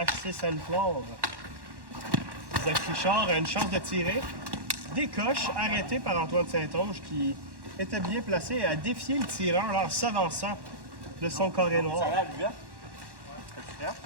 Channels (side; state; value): left; late; 1.1 ms